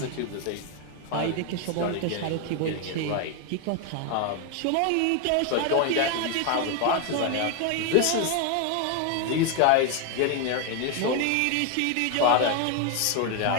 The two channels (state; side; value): different; both; correlation 0.01